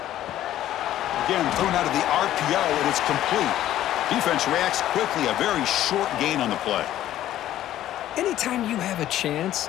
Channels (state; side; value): quieter; right; 12.9 dB